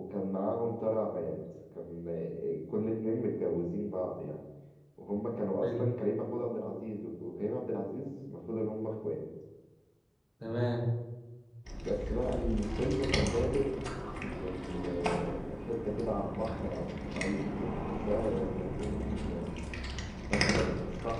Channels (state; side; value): identical; both; correlation 1.00